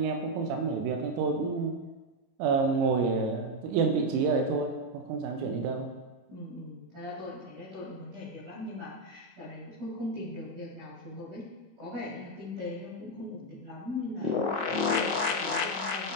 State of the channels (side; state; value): left; late; 30 ms